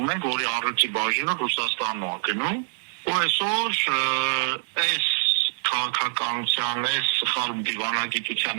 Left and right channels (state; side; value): silent; left; digital silence